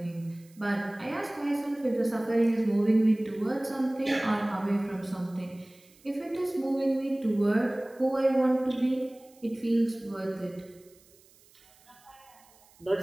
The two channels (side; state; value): right; noise; hiss, 28 dB below the sound